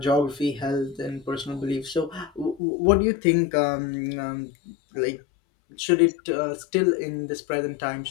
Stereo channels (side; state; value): right; drops out; at 2.6 s